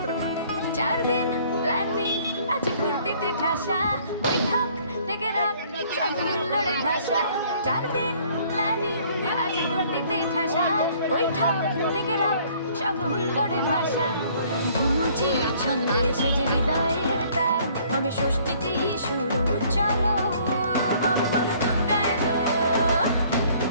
4 দিন প্ল্যানিং আজ ফুর্তিতে ঠাসা বৈঠক থেকে রাখ সব হুল্লোড়ে ভাষা 4 দিন প্ল্যানিং আজ ফুর্তিতে ঠাসা বৈঠক থেকে রাখ সব হুল্লোড়ে ভাষা ধনুচির ছন্দে সেজে হৃদয়ের তার হবে ষষ্ঠীতেই শুরু চলো বড় বড় দুর্গা এলো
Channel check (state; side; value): inverted; both; correlation -0.58